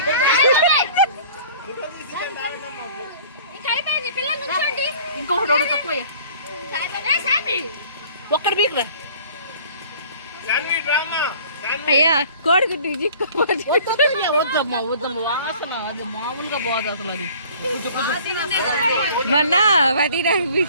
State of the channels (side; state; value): both; inverted; correlation -0.50